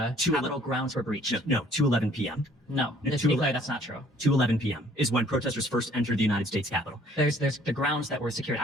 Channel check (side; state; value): both; normal; correlation 0.58